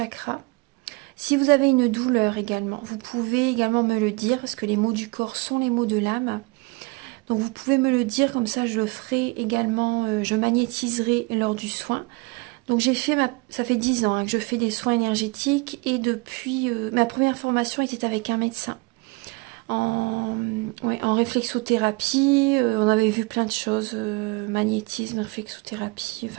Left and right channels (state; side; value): quieter; left; 26.1 dB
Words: Si vous avez une douleur également, vous pouvez également me le dire, parce que les mots du corps sont les mots de l'âme. Donc vous pouvez me le dire, comme ça je le ferai également, je magnétiserai lors du soin. Donc ça fait 10 ans que je fais des soins énergétiques et depuis ma première formation était avec un médecin en réflexothérapie. On avait vu plein de choses, magnétisme, réflexothérapie,